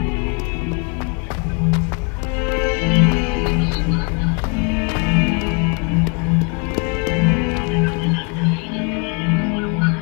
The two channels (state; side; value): quieter; right; 32.3 dB